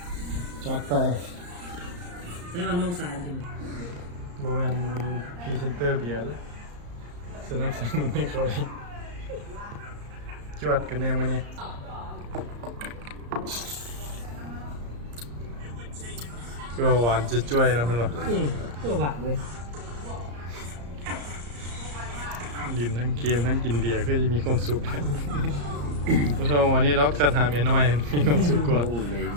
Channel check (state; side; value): late; left; 34 ms